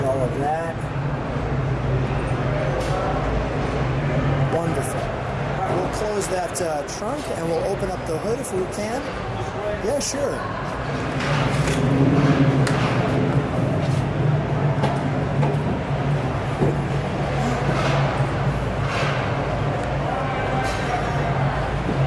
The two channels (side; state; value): both; identical; correlation 1.00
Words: all of that. Wonderful. All right, we'll close that trunk and we'll open up the hood if we can. Yeah, sure.